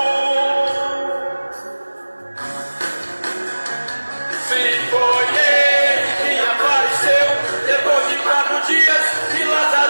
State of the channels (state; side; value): inverted; both; correlation -1.00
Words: Se foi Ele que apareceu depois de 4 dias que